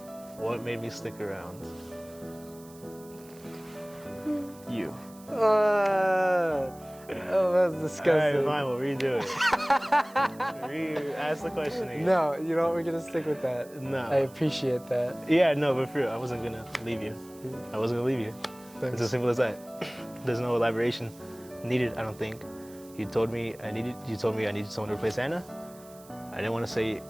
What made me stick around? You. Oh, that's disgusting. Alright, fine, we'll redo it. Ask the question again. No, you know what? We're gonna stick with that. No. I appreciate that. Yeah, no, but for real, I wasn't gonna leave you. I wasn't gonna leave you. Thanks. It's as simple as that. There's no elaboration needed, I don't think. You told me I needed someone to replace Anna. I didn't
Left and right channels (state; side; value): noise; right; hiss, 23 dB below the sound